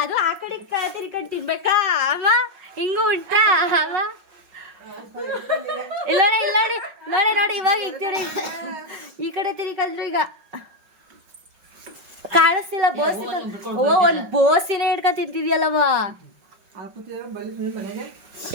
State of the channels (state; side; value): late; left; 5.4 ms